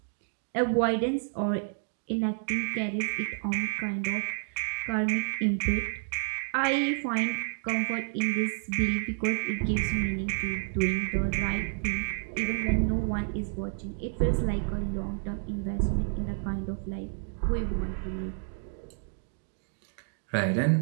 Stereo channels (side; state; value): left; silent; digital silence